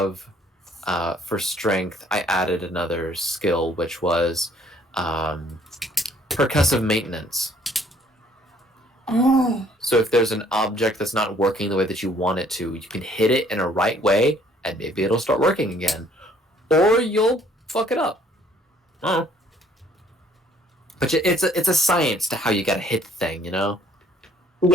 for strength. I added another skill, which was percussive maintenance. Oh. So if there's an object that's not working the way that you want it to, you can hit it in a right way, and maybe it'll start working again, or you'll fuck it up. Oh. But it's a science to how you gotta hit the thing, you know.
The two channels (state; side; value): normal; both; correlation 0.61